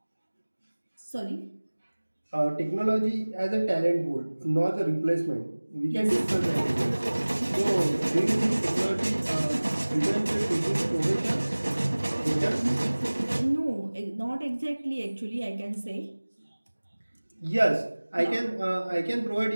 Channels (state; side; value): inverted; both; correlation -1.00